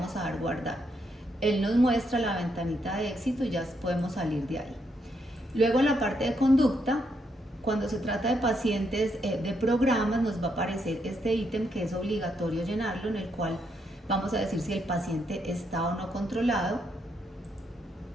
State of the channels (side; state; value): both; normal; correlation 0.77